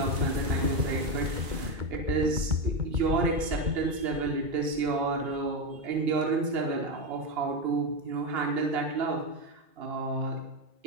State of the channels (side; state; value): left; late; 2.9 ms